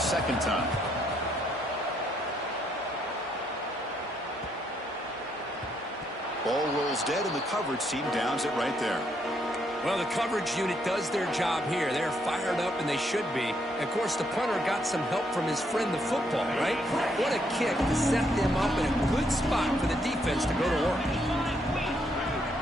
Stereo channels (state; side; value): normal; both; correlation 0.74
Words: time. Ball rolls dead, and the coverage team downs it right there. Well, the coverage unit does their job here. They're fired up, and they should be. Of course, the punter got some help from his friend, the football, right? What a kick to set them up in a good spot for the defense to go to work.